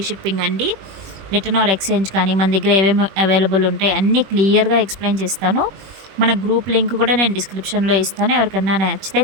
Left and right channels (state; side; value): late; left; 21 ms